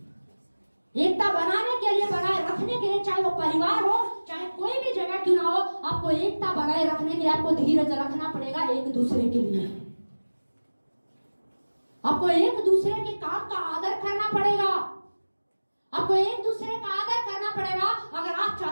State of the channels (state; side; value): inverted; both; correlation -1.00